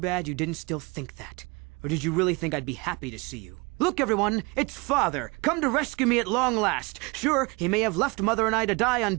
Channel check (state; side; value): quieter; left; 27.5 dB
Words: you didn't still think that. Or did you really think I'd be happy to see you? Look, everyone, it's Father, come to rescue me at long last. Sure, he may have left Mother and I to die on